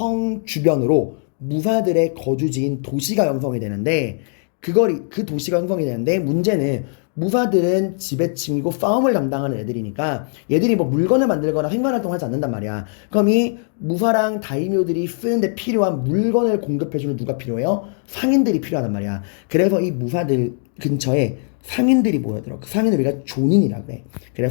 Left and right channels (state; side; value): silent; right; 57 dB below the other